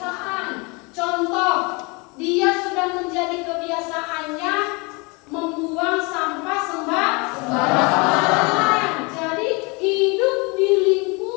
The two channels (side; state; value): right; quieter; 28.9 dB